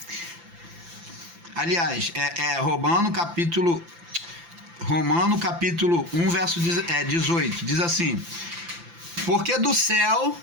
Aliás, Romano capítulo 1, verso 18. Diz assim: porque do céu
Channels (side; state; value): left; late; 5.9 ms